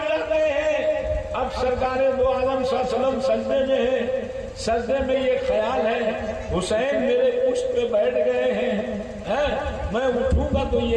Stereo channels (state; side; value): identical; both; correlation 1.00